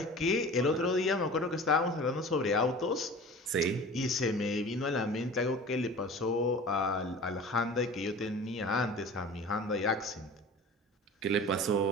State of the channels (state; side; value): normal; both; correlation 0.39